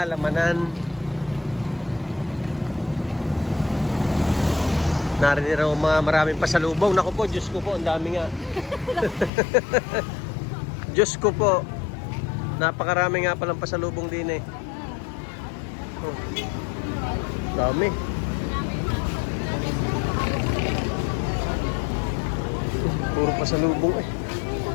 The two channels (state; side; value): drops out; right; at 9.3 s